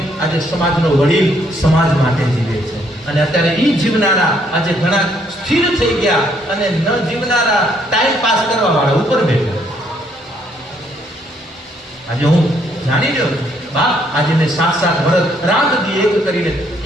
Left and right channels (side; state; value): both; normal; correlation 0.69